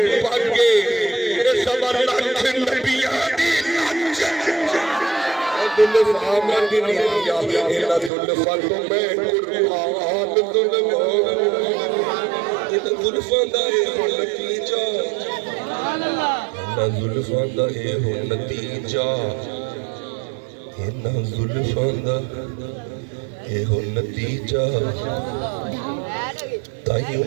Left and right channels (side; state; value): left; drops out; at 8.1 s